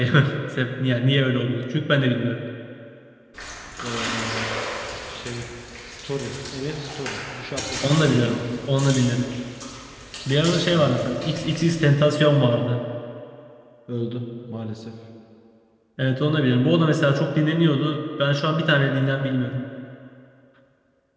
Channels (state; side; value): identical; both; correlation 1.00